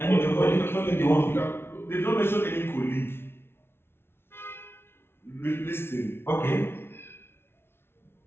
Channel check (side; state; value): right; late; 0.12 ms